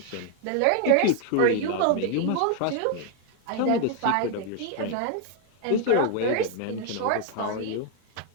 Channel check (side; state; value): both; different; correlation 0.01